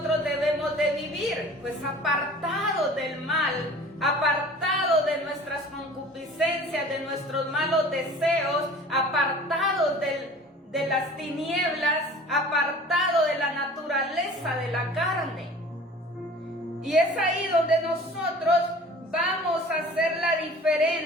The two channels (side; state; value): both; normal; correlation 0.45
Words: debemos de vivir? Pues apartados del mal, apartados de nuestras concupiscencias, de nuestros malos deseos, apartados de las tinieblas, apartados de la naturaleza de la carne. Y es ahí donde nosotros vamos a hacer la